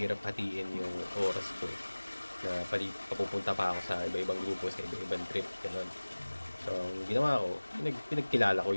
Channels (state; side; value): inverted; both; correlation -1.00